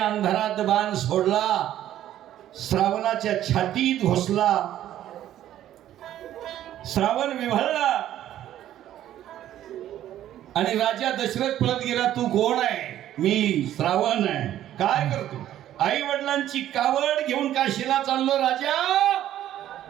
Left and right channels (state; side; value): quieter; left; 12.2 dB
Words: बाण सोडला, श्रावणाच्या छातीत घुसला. श्रावण विव्हळला आणि राजा दशरथ पळत गेला. तू कोण आहे? मी श्रावण आहे. काय करतो? आई वडिलांची कावड घेऊन काशीला चाललो राजा.